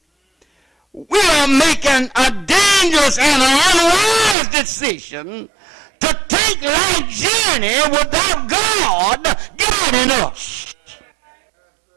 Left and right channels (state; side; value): drops out; left; at 4.4 s